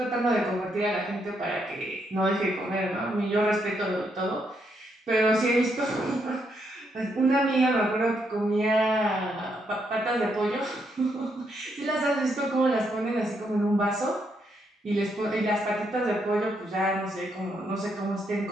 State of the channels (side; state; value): both; normal; correlation 0.77